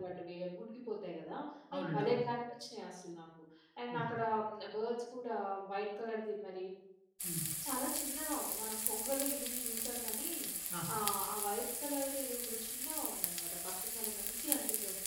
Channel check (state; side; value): identical; both; correlation 1.00